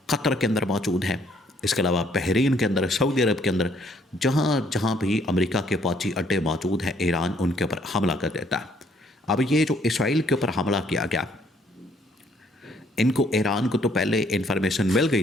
قطر کے اندر موجود ہیں، اس کے علاوہ بحرین کے اندر، سعودی عرب کے اندر، جہاں جہاں بھی امریکہ کے فوجی اڈے موجود ہیں، ایران ان کے اوپر حملہ کر دیتا ہے۔ اب یہ جو اسرائیل کے اوپر حملہ کیا گیا، ان کو، ایران کو تو پہلے انفارمیشن مل گئی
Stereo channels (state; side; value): normal; both; correlation 0.65